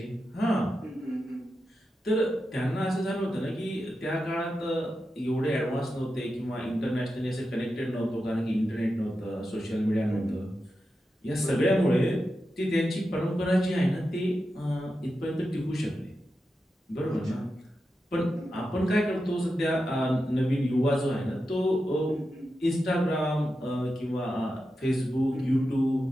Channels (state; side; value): normal; both; correlation 0.89